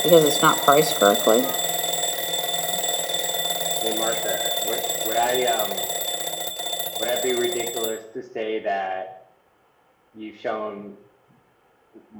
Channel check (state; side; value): identical; both; correlation 1.00